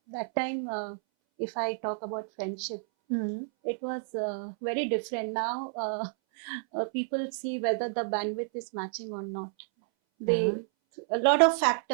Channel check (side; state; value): left; silent; 58 dB below the other